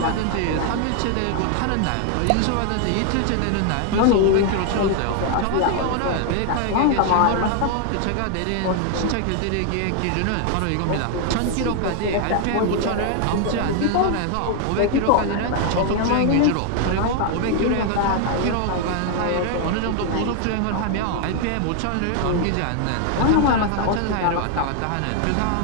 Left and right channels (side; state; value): both; different; correlation 0.00